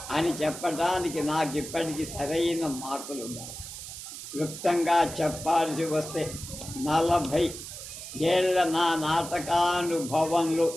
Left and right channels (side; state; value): right; noise; hiss, 10 dB below the sound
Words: అని చెప్పడానికి నాకు ఇప్పటికీ సరైన మార్కులు ఉన్నాయి. క్లుప్తంగా చెప్పాల్సి వస్తే 40 ఏళ్ల నా నాటకానుభవంలో